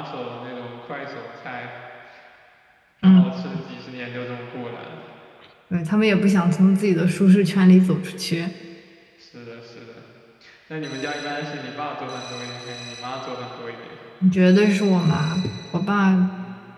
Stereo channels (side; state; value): both; identical; correlation 1.00